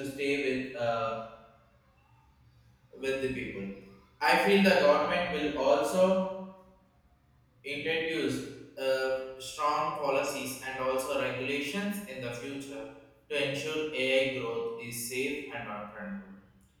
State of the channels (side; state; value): both; identical; correlation 1.00